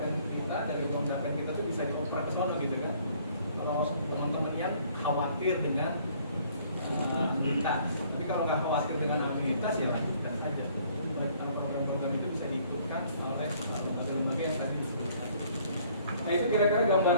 kita, dari uang Dapen kita tuh bisa dioper ke sana gitu kan. Kalau teman-teman yang khawatir dengan anuitas, tapi kalau nggak khawatir dengan anuitas ya lanjutkan saja. Program-program itu bisa diikutkan oleh lembaga yang tadi disebutkan. Nah, itu kira-kira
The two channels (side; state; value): both; inverted; correlation -0.60